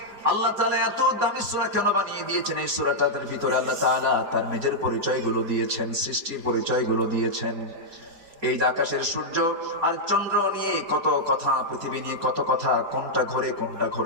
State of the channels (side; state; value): left; late; 5.0 ms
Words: আল্লাহ তাআলা এত দামি সূরা কেন বানিয়ে দিয়েছেন? এই সূরাটার ভিতরে আল্লাহ তাআলা তার নিজের পরিচয়গুলো দিয়েছেন, সৃষ্টির পরিচয়গুলো দিয়েছেন। এই আকাশের সূর্য আর চন্দ্র নিয়ে কত কথা, পৃথিবী নিয়ে কত কথা, কোনটা ঘোরে কোনটা